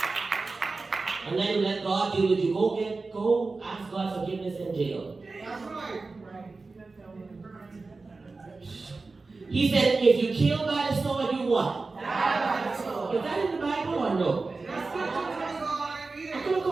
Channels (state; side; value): quieter; left; 3.8 dB